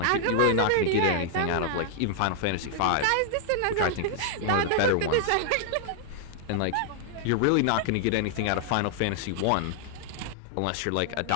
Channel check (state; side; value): different; both; correlation -0.01